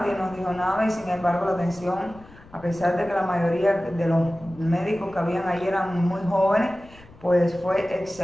nos dijo nada y sin embargo la atención, a pesar de que la mayoría de los médicos que habían ahí eran muy jóvenes, pues fue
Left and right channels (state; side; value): noise; left; rumble, 23 dB below the sound